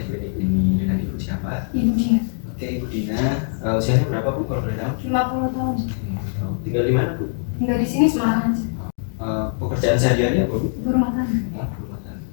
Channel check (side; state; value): right; silent; digital silence